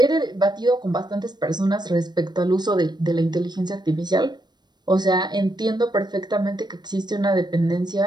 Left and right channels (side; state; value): left; late; 0.21 ms